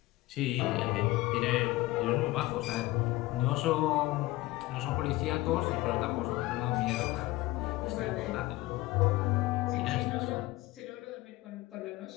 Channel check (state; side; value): quieter; right; 18.6 dB